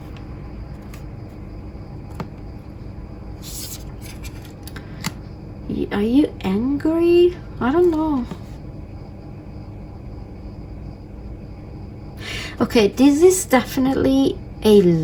Are you angry? I don't know. Okay, this is definitely a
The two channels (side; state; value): both; identical; correlation 1.00